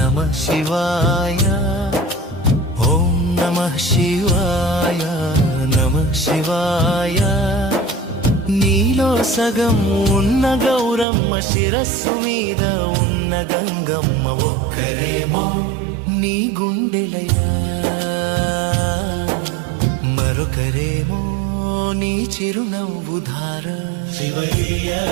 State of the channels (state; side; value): drops out; left; at 11.1 s